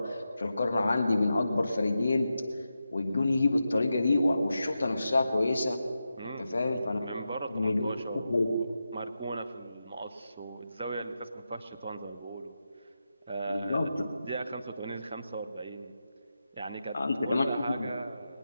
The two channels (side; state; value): both; inverted; correlation -0.90